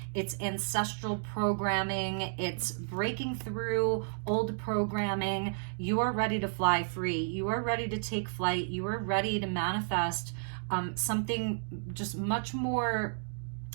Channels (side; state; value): left; silent; digital silence